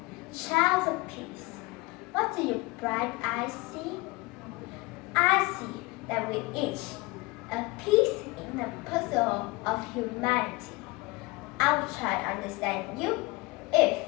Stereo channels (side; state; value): right; quieter; 23.3 dB